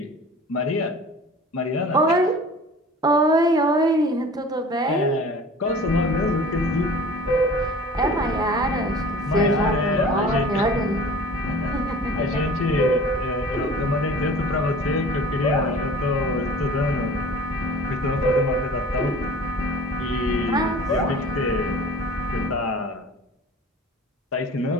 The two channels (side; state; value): both; normal; correlation 0.44